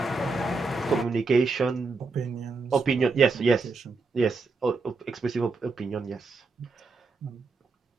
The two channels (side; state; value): left; quieter; 4.0 dB